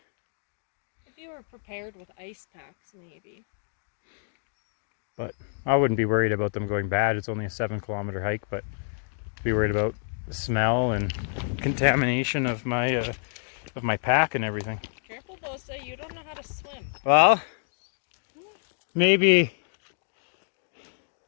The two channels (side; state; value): right; silent; digital silence